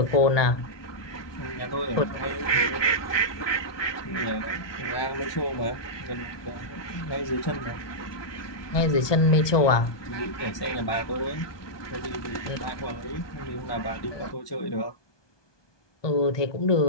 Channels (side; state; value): right; late; 1.2 ms